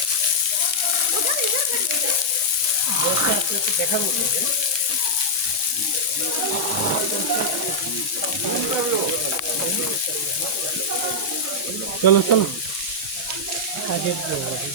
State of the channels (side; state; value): both; normal; correlation -0.06